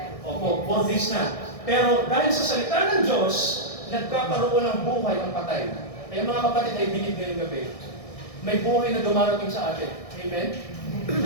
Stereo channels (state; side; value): late; right; 1.6 ms